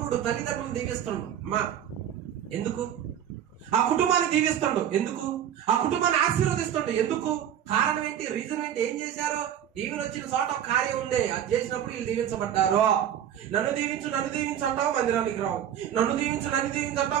తల్లిదండ్రులు దీవిస్తాడు. అమ్మా ఎందుకు? ఆ కుటుంబాన్ని దీవిస్తాడు. ఎందుకు? ఆ కుటుంబాన్ని ఆశీర్వదిస్తాడు. ఎందుకు? కారణం ఏంటి? రీజన్ ఏంటి? ఏం చేశారు? దీవెన వచ్చిన చోట కార్యం ఉండే, అది చేసినప్పుడు వీళ్ళు దీవించబడ్డారు. నన్ను దీవించు అంటావు, మందిరానికి రావు. నన్ను దీవించు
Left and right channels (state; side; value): quieter; left; 10.1 dB